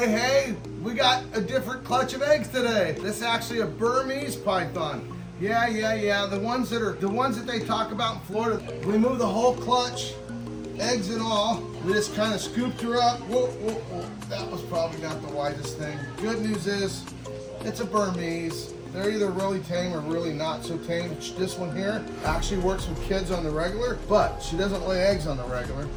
we got a different clutch of eggs today. This is actually a Burmese python. Yeah. The ones that they talk about in Florida. We moved the whole clutch, eggs and all. We just kind of scooped her up. Whoa. That was probably not the wisest thing. Good news is, it's a Burmese. They're either really tame or really not so tame. This one here actually works with kids on the regular, but she doesn't lay eggs on the regular.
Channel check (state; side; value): identical; both; correlation 1.00